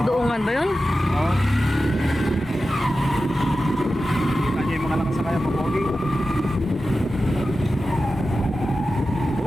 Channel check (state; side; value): normal; both; correlation 0.93